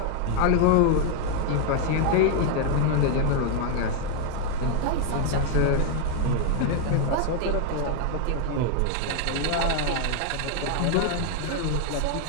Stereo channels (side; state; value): both; different; correlation 0.01